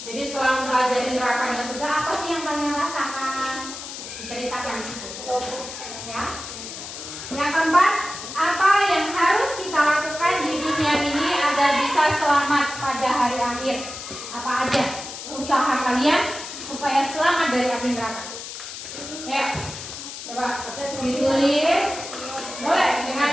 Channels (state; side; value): noise; left; hiss, 10 dB below the sound